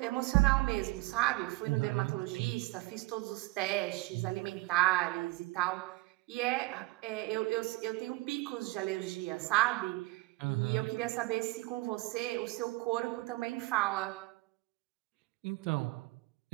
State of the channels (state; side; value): quieter; left; 21.9 dB